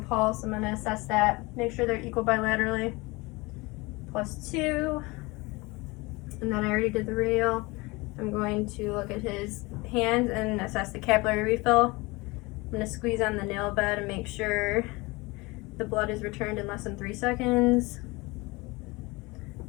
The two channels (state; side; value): quieter; right; 24.1 dB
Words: pulse, I'm going to assess that. Make sure they're equal bilaterally. +2. And then I already did the radial. I'm going to look at his hands and assess the capillary refill. I'm going to squeeze on the nail bed and make sure the blood is returned in less than 3 seconds.